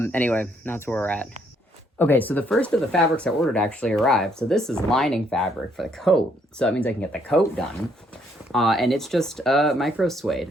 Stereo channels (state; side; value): normal; both; correlation 0.69